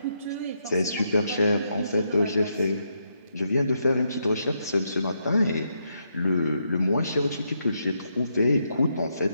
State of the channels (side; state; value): both; inverted; correlation -0.79